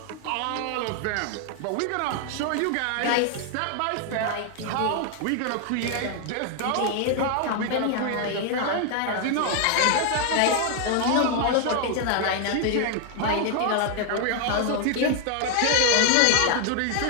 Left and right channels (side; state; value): both; different; correlation 0.00